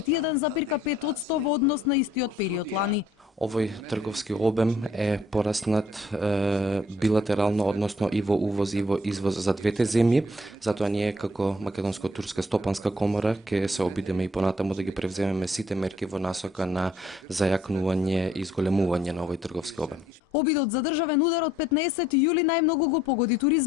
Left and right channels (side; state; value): both; normal; correlation 0.63